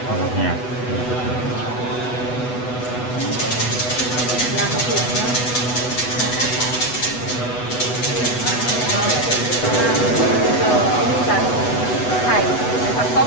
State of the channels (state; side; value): late; right; 8.1 ms